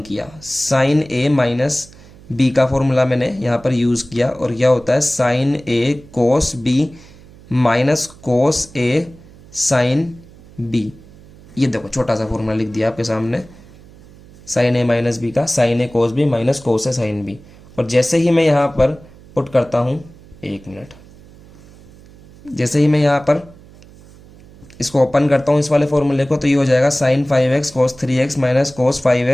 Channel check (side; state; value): right; noise; hum, 23 dB below the sound